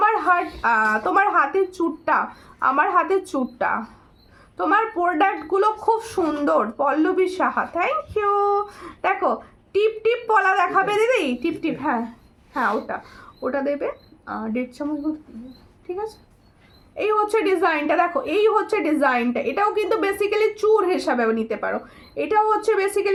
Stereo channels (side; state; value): both; identical; correlation 1.00